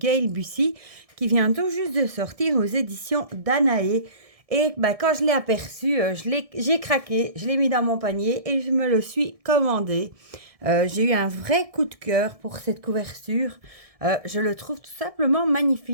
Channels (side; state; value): left; late; 1.6 ms